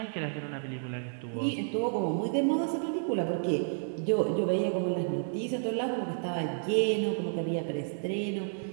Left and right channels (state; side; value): silent; left; digital silence